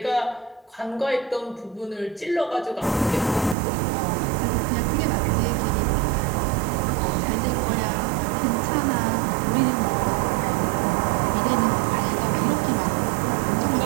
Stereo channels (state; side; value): drops out; left; at 3.6 s